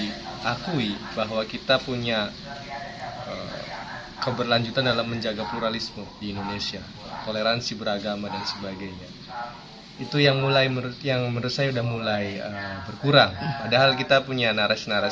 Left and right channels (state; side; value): identical; both; correlation 1.00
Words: bahwa kita punya keberlanjutan dalam menjaga pluralisme di Indonesia, toleransi beragama dan sebagainya. Itu yang menurut saya udah mulai berkurang. Padahal kita punya